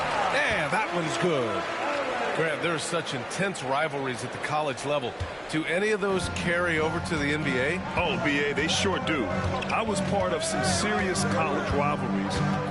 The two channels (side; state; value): both; identical; correlation 1.00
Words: And that one's good. Grant, there are such intense rivalries at the college level. Do any of those carry over to the NBA? Oh, B.A., they sure do. I was part of some serious college rivalries.